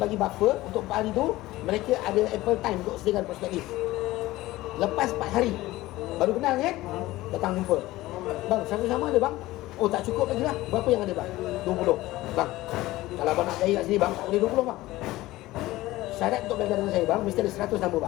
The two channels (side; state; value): right; quieter; 17.7 dB